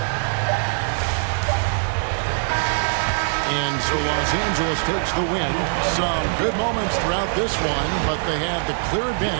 And so Los Angeles takes the win. Some good moments throughout this one, but they had the clear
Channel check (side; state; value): left; silent; digital silence